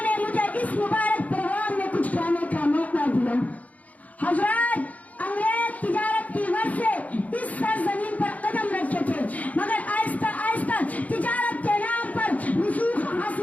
نے مجھے اس مبارک پروگرام میں کچھ کہنے کا موقع دیا۔ حضرات، انگریز تجارت کی غرض سے اس سرزمین پر قدم رکھے تھے، مگر آہستہ آہستہ تجارت کے نام پر رسوخ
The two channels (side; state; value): right; late; 0.072 ms